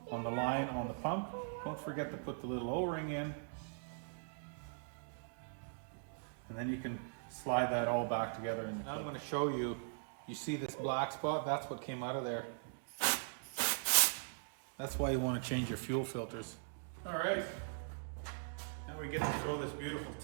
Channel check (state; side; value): silent; left; digital silence